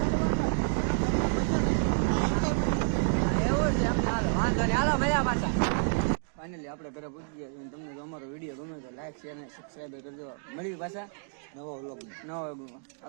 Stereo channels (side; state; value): left; silent; 58 dB below the other